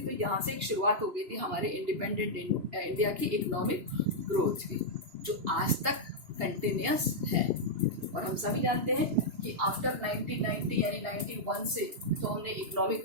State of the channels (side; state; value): left; late; 2.9 ms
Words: यहाँ से एक शुरुआत हो गई थी हमारे इंडिपेंडेंट इंडिया की इकोनॉमिक ग्रोथ की, जो आज तक कंटिन्यूस है. और हम सभी जानते हैं कि आफ्टर 1990 यानी 91 से तो हमने इकोनॉमिक